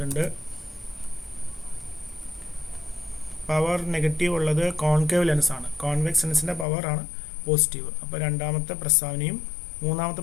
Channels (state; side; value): drops out; right; at 6.7 s